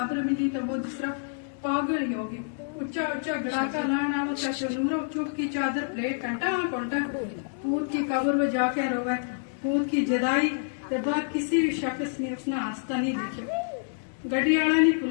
ملی تو وہ دوسرا پاگل ہی ہوگی. اچا اچا گڑاکا لانا وہ چچورو چپ کی چادر پلیٹ کٹا پلٹا پوت کی قبر میں جا کے روے. پوت کی جدائی کے بعد کسی بھی شخص نے اس نے آستہ نہیں دیکھا. گڈی والا نے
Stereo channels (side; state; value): right; silent; digital silence